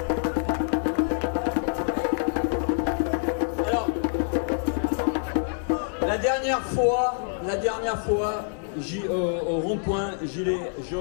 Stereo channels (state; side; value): silent; right; 61 dB below the other